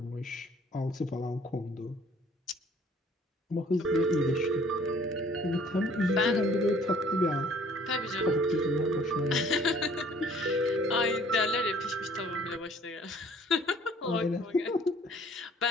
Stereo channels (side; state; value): both; normal; correlation 0.56